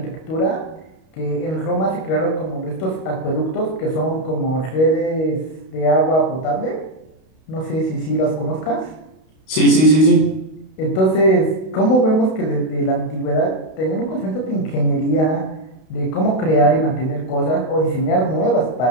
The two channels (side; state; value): right; late; 32 ms